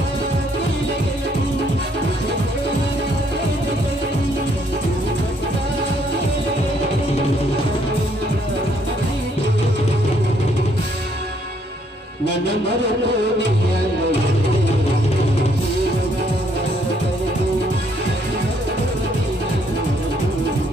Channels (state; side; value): normal; both; correlation 0.68